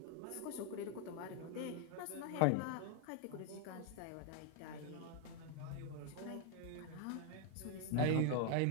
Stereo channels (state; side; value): different; both; correlation 0.00